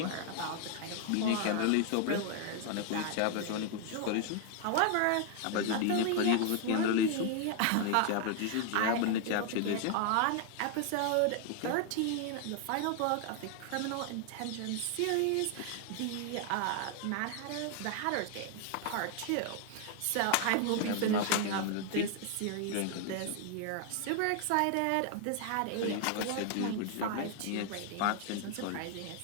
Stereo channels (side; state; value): both; different; correlation 0.00